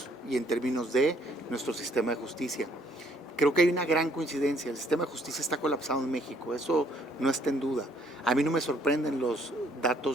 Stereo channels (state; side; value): normal; both; correlation 0.65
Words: y en términos de nuestro sistema de justicia. Creo que hay una gran coincidencia, el sistema de justicia está colapsado en México, eso no está en duda. A mí no me sorprenden los